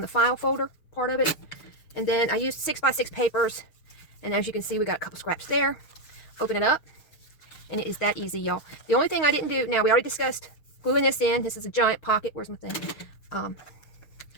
the file folder part of it. And then I used 6x6 papers. And as you can see, we got a couple scraps there. Open it up. And it is that easy, y'all. The only thing I didn't do, now we already discussed gluing this in. This is a giant pocket. Where's my thing?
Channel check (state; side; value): late; right; 6.4 ms